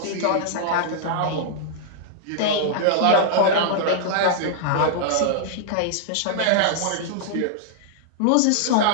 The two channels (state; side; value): different; both; correlation -0.01